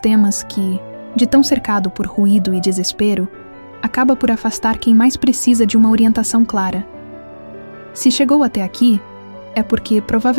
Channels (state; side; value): inverted; both; correlation -1.00